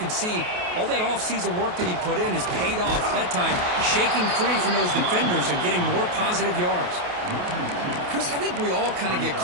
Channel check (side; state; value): left; late; 28 ms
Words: see all that offseason work that he put in has paid off. That time, shaking free from those defenders and getting more positive yards. Chris, I think we all kind of get